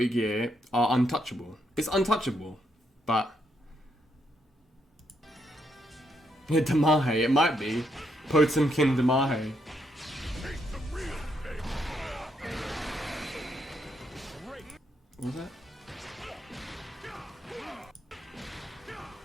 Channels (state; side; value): normal; both; correlation 0.77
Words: Gear are untouchable. It's untouchable, but yeah, Damahe, it might be Potemkin Damahe. What was that?